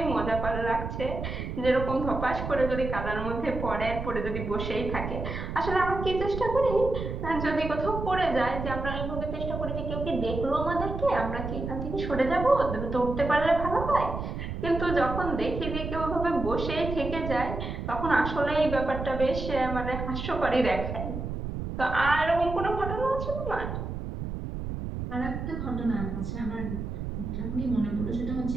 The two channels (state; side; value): noise; right; rumble, 5 dB below the sound